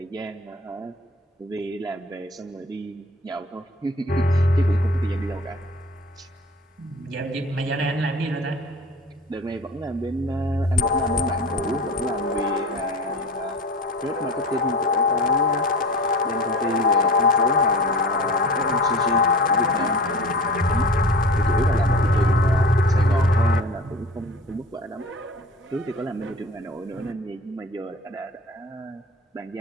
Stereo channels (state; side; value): normal; both; correlation 0.38